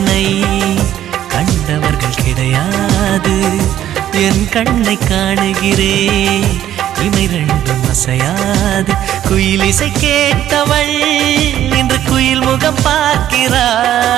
கண்டவர்கள் கிடையாது என் கண்ணை காணுகிறே இமை ரெண்டும் அசையாது குயிலிசை கேட்டவள் இன்று குயில் முகம்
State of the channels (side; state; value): left; quieter; 11.8 dB